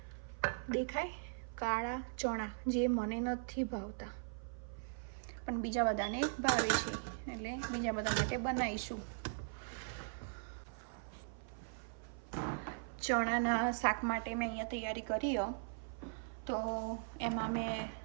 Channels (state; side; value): silent; left; 51 dB below the other